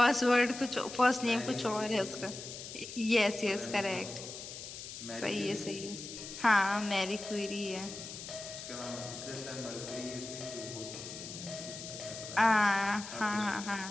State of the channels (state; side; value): noise; left; hiss, 10 dB below the sound